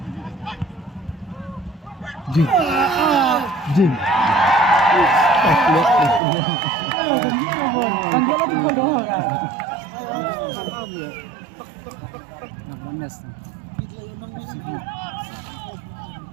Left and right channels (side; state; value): left; drops out; at 6.2 s